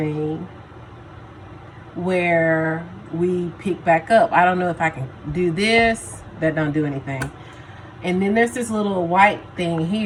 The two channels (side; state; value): both; identical; correlation 1.00